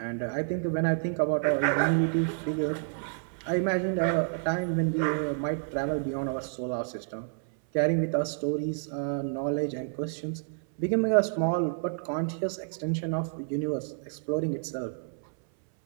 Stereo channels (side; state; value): left; silent; 58 dB below the other